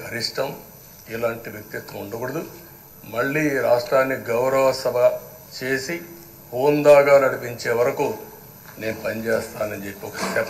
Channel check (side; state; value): both; identical; correlation 1.00